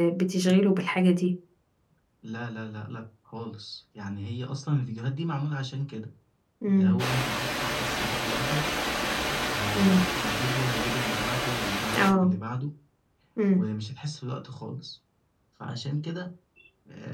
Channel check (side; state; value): both; identical; correlation 1.00